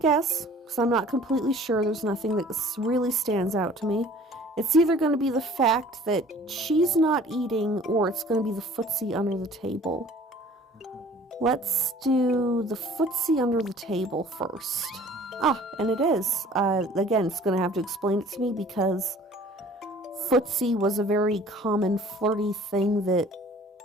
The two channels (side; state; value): both; normal; correlation 0.51